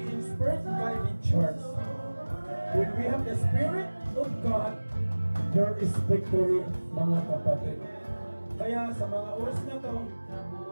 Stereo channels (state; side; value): inverted; both; correlation -1.00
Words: inspired. we have the Spirit of God, there is victory, mga kapatid. Kaya sa mga oras na to,